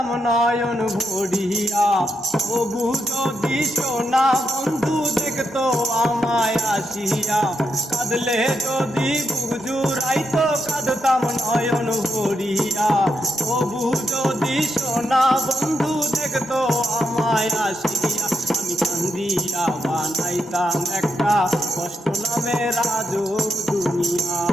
নয়ন ভরিয়া। তবু যদি সোনা বন্ধু দেখতো আমায় আসিয়া। কাঁদলে যদি বুক জুড়াইতো কাঁদতাম নয়ন ভরিয়া। তবু যদি সোনা বন্ধু দেখতো আমায় আসিয়া। আমি কান্দিয়া বানাইতাম একটা কষ্ট নামের আজব দুনিয়া।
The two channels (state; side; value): normal; both; correlation 0.83